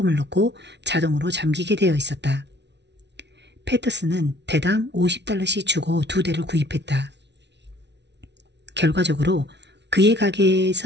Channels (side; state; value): left; late; 0.50 ms